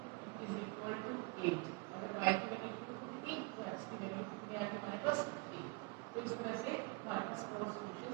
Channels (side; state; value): left; quieter; 27.5 dB